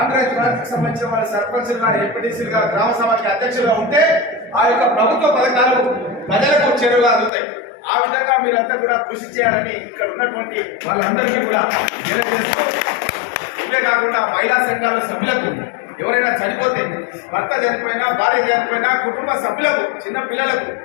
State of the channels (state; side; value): drops out; right; at 7.3 s